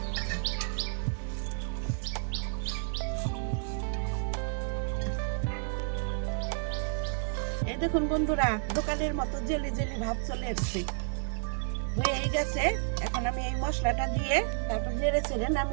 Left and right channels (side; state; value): left; silent; digital silence